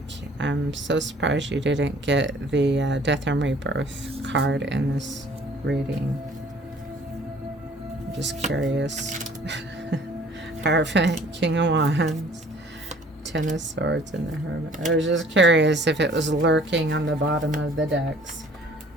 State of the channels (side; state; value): both; normal; correlation 0.54